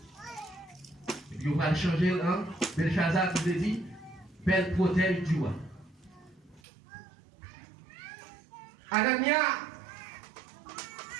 Et puis on va changer, hein, Belshazzar qui veut dire, belle protège du roi. Anania,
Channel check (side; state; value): left; drops out; at 6.6 s